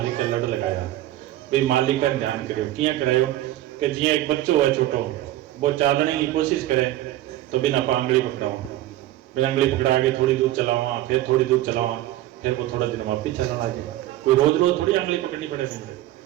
के लड़ लगाया, भी मालिक का ध्यान करो किया करायो कि जिया एक बच्चो है छोटो वो चालने की कोशिश करे तो बिना आंगली पकड़ाओ, बिना आंगली पकड़ा के थोड़ी दूर चलावा, फिर थोड़ी दूर चलावा, फिर वो थोड़ा दिन वापिस चलाना जाए। कोई रोज रोज थोड़ी आंगली पकड़नी पड़ेगी।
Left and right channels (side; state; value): left; quieter; 14.8 dB